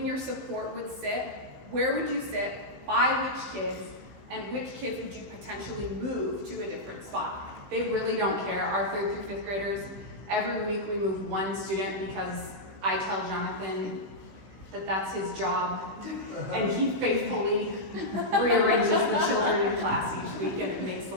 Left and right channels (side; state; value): left; late; 16 ms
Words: your support would sit, where would you sit, by which kids, and which kids would you potentially move to a different spot? They really don't care. Our 3rd through 5th graders, every week we move one student because I tell Jonathan that that's his job, and he faithfully rearranges the children in class each week, and it makes the